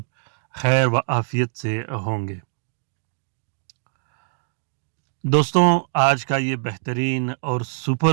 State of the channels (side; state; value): left; silent; digital silence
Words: खैर व आफ़ियत से होंगे। दोस्तों, आज का ये बेहतरीन और